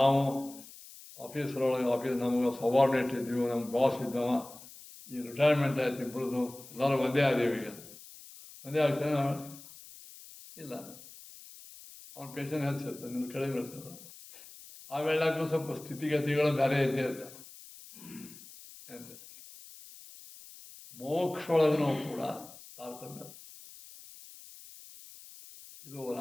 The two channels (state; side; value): noise; left; hiss, 18 dB below the sound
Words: ಆಫೀಸ್ ನಮಗೆ ಸಬಾರ್ಡಿನೇಟ್ ಇದ್ದೀವಿ, ನಮ್ಮ ಬಾಸ್ ಇದ್ದವ, ಈ ರಿಟೈರ್ಮೆಂಟ್ ಆಯ್ತು, ಇಬ್ಬರದು ಎಲ್ಲರೂ ಒಂದೇ ಆದೀವಿ. ಈಗ ಒಂದೇ ಆಗ್ತಾನೆ ಇಲ್ಲ. ಅವ್ನ ಪೇಷನ್ ಹೆಚ್ಚಿರ್ತದೆ, ನಿನ್ನ ಕಡಿಮೆ ಇರ್ತದೆ. ಆ ವೇಳೆಗೂ ಸ್ವಲ್ಪ ಸ್ಥಿತಿಗತಿಗಳು ಬೇರೆ ಇದ್ದೇ ಇರ್ತದೆ. ಮೋಕ್ಷೊಳಗೂ ಕೂಡ ತಾರತಮ್ಯ. ಇದು